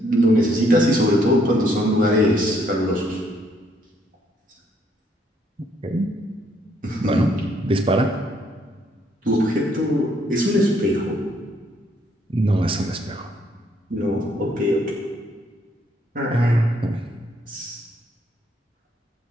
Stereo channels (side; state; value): both; normal; correlation 0.69